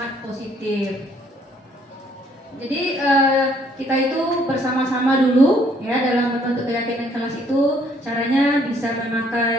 positif. Jadi kita itu bersama-sama dulu ya dalam membentuk keyakinan kelas itu. Caranya bisa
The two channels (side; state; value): both; normal; correlation 0.64